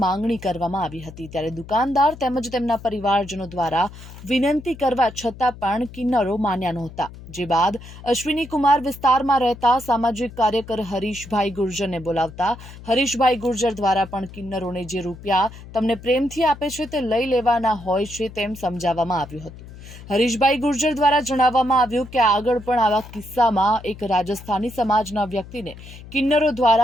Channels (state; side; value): noise; left; hum, 16 dB below the sound